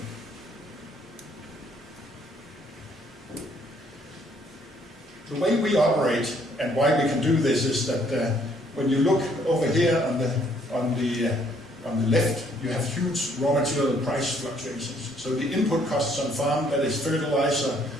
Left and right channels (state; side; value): normal; both; correlation 0.65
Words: The way we operate and why we can do this is that when you look over here on the left, you have huge raw material price fluctuations. So the input costs on farm, that is fertilizer,